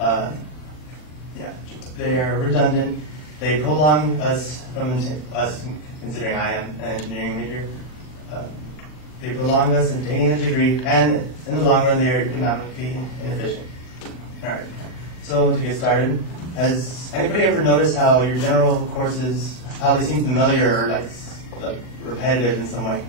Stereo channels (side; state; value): right; late; 40 ms